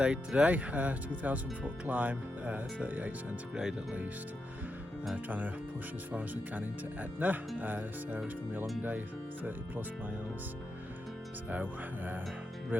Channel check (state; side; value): normal; both; correlation 0.86